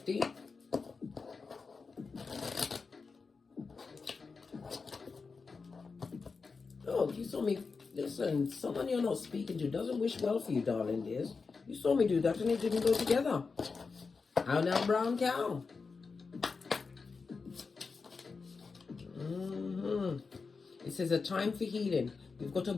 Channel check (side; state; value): right; quieter; 4.7 dB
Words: Oh, you saw me. Listen, someone you're not speaking to doesn't wish well for you, darling dears. You saw me do that and it didn't go together. How now, brown cow? It says a time for healing. We've got a